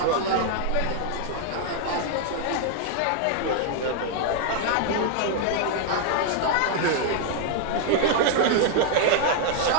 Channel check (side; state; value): both; different; correlation 0.00